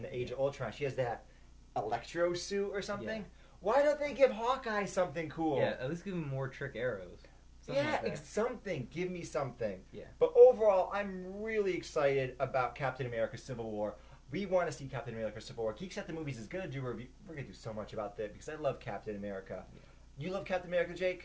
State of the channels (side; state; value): both; identical; correlation 1.00